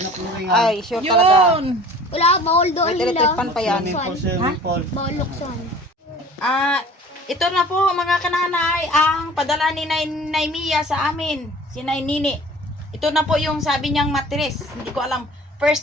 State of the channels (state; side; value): normal; both; correlation 0.46